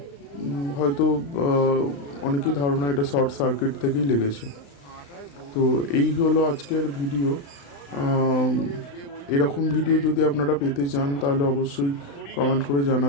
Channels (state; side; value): late; right; 35 ms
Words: হয়তো অনেকেই ধারণা এটা শর্ট সার্কিট থেকেই লেগেছে। তো এই হলো আজকের ভিডিও। এরকম ভিডিও যদি আপনারা পেতে চান তাহলে অবশ্যই কমেন্ট করে